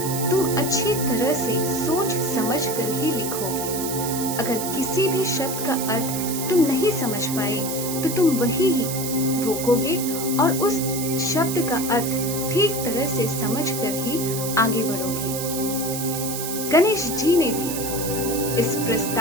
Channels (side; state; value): right; noise; hiss, 5 dB below the sound